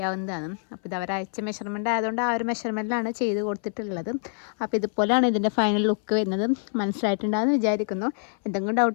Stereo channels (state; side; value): silent; right; 59 dB below the other